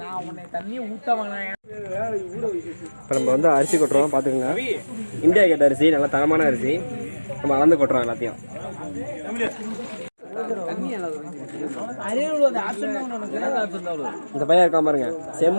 நான் உன்னை தண்ணி ஊத்த வேணாம். இப்போ நம்ம வந்து அரிசி கொட்டுறோம் பார்த்துக்கோங்க. இந்தியா கேட்ட அரிசி, நல்லா தரமான அரிசி. நம்ம அளந்து கொட்டுறோம் எல்லாத்தையும். இந்த பையன் இருக்கா பாருங்க,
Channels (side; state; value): both; inverted; correlation -1.00